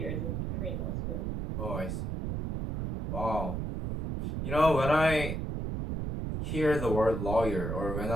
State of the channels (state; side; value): noise; right; rumble, 3 dB below the sound